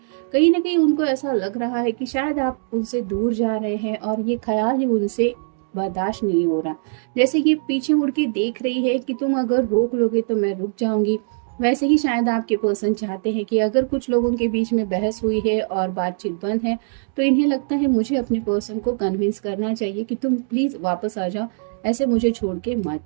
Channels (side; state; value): left; silent; digital silence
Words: कहीं ना कहीं उनको ऐसा लग रहा है कि शायद आप उनसे दूर जा रहे हैं और ये ख्याल ही उनसे बर्दाश्त नहीं हो रहा। जैसे ये पीछे मुड़ के देख रही है कि तुम अगर रोक लोगे तो मैं रुक जाऊंगी, वैसे ही शायद आपके पर्सन चाहते हैं कि अगर कुछ लोगों के बीच में बहस हुई है और बातचीत बंद है, तो इन्हें लगता है मुझे अपने पर्सन को कन्विंस करना चाहिए कि तुम प्लीज वापस आ जाओ, ऐसे मुझे छोड़ के मत